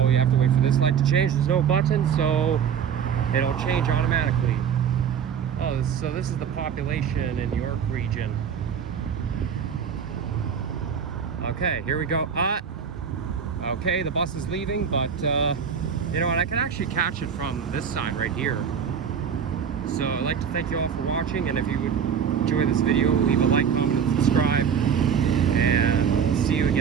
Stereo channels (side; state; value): left; quieter; 7.5 dB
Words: you have to wait for this light to change. There's no button, so it'll change automatically. Oh, so this is the population in York region. Okay, here we go. Okay, the bus is leaving, but you know what? I can actually catch it from this side right here. So I'd like to thank you all for watching, and if you would enjoy this video, leave a like, comment, and subscribe. And I'll see you